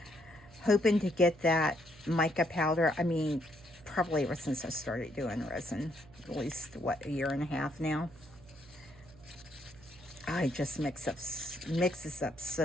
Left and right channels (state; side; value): noise; right; hum, 22 dB below the sound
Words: hoping to get that mica powder, I mean, probably ever since I started doing resin, at least, what, a year and a half now. I just mixes up